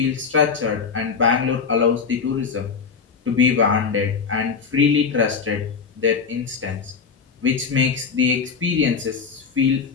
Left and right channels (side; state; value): right; quieter; 5.7 dB